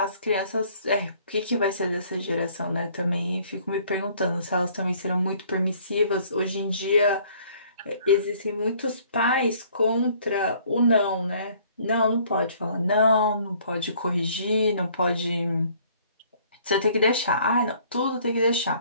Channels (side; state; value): both; inverted; correlation -0.59